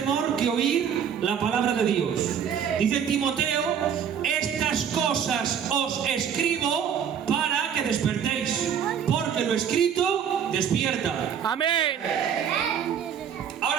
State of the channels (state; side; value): quieter; left; 8.0 dB